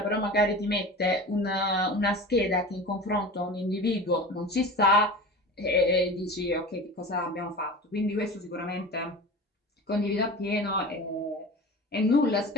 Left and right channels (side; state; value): both; normal; correlation 0.34